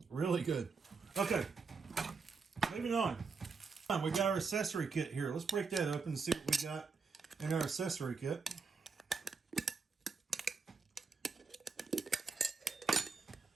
Really good. Okay. Moving on. We got our accessory kit here. Let's break that open and see what we got in our accessory kit.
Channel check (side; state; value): left; quieter; 5.0 dB